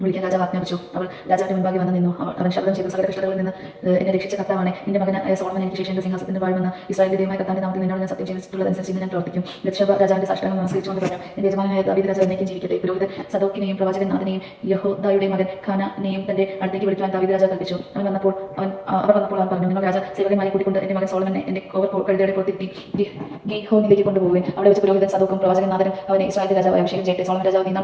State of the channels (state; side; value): identical; both; correlation 1.00